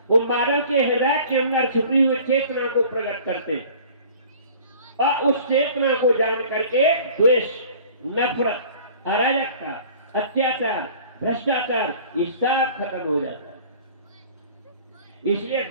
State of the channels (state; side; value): inverted; both; correlation -0.47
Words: वो मानव के हृदय के अंदर छुपी हुई चेतना को प्रकट करते हैं, और उस चेतना को जान करके द्वेष, नफरत, अराजकता, अत्याचार, भ्रष्टाचार, ये सब खत्म हो जाता है। इसलिए